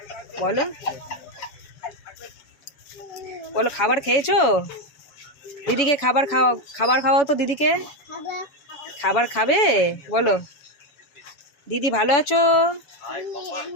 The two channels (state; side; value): late; right; 7.1 ms